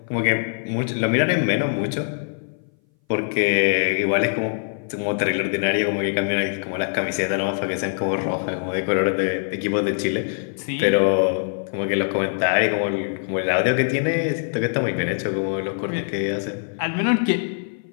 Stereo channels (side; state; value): right; silent; 59 dB below the other